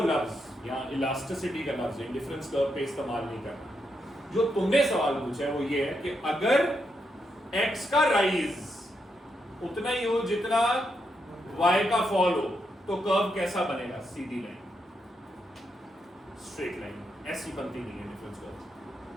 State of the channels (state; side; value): normal; both; correlation 0.82